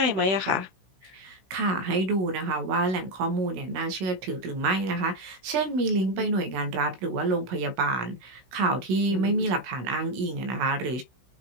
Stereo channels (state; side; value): late; left; 16 ms